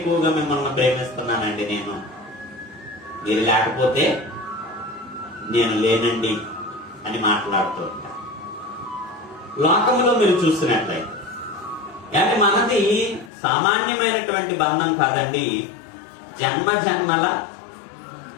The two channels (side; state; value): right; drops out; at 13.3 s